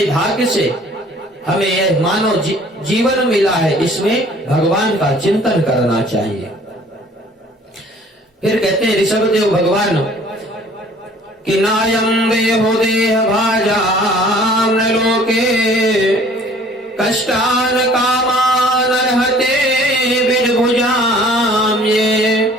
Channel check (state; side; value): normal; both; correlation 0.53